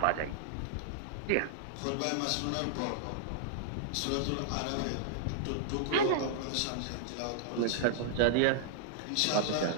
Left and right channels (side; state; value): both; different; correlation -0.01